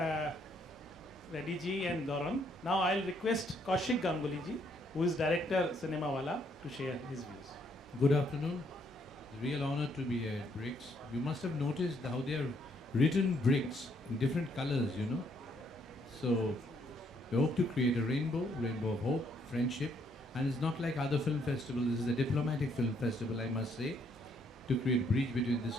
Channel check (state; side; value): normal; both; correlation 0.70